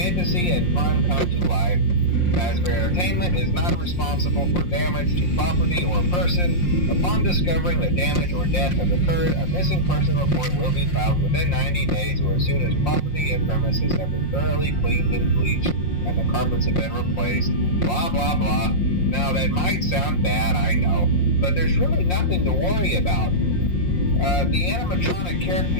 and fun come to life. Fazbear Entertainment is not responsible for damage to property or person. Upon discovering that damage or death has occurred, a missing person report will be filed within 90 days or as soon as property and premises have been thoroughly cleaned and bleached and the carpets have been replaced. Blah, blah, blah. Now, that might sound bad, I know, but there's really nothing to worry about. The animatronic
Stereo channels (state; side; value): late; right; 5.6 ms